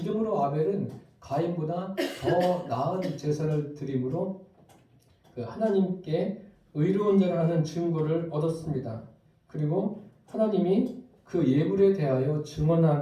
아벨은 가인보다 더 나은 제사를 드림으로 하나님께 의로운 자를 하는 증거를 얻었습니다. 그리고 하나님이 그 예물에 대하여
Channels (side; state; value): both; identical; correlation 1.00